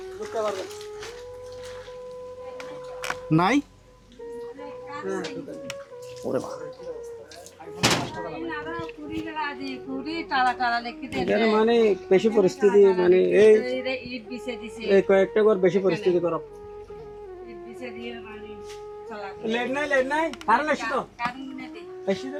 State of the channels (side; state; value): both; identical; correlation 1.00